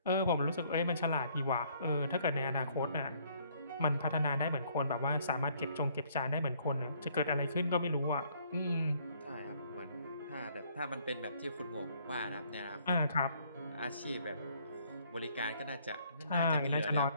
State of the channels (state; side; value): inverted; both; correlation -0.64